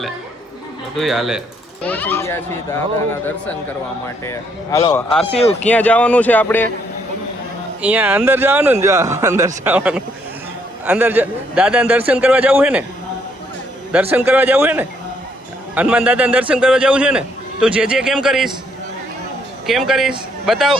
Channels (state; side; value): normal; both; correlation 0.70